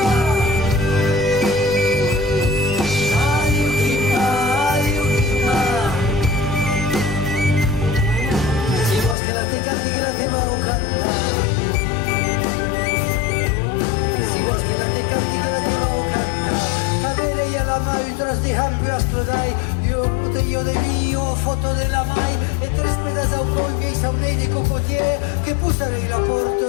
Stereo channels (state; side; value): drops out; right; at 9.2 s